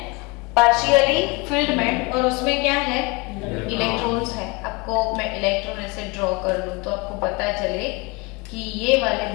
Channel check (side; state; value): right; quieter; 26.8 dB